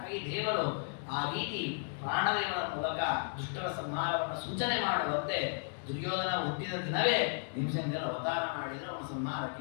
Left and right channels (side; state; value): right; silent; 55 dB below the other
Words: ದೇವರು ಆ ರೀತಿ ಪ್ರಾಣದೇವರ ಮೂಲಕ ದುಷ್ಟರ ಸಂಹಾರವನ್ನು ಸೂಚನೆ ಮಾಡುವಂತೆ ದುರ್ಯೋಧನ ಹುಟ್ಟಿದ ದಿನವೇ ಭೀಮಸೇನ ದೇವರ ಅವತಾರ ಮಾಡಿದರೆ ಅವನ ಸಂಹಾರಕ್ಕೆ